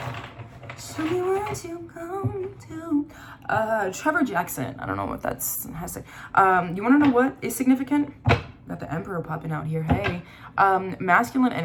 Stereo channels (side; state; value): both; identical; correlation 1.00